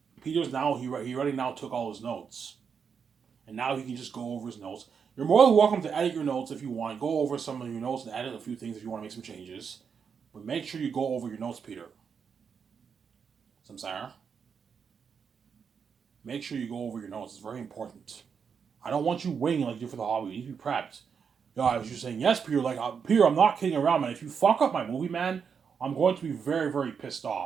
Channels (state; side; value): quieter; left; 6.5 dB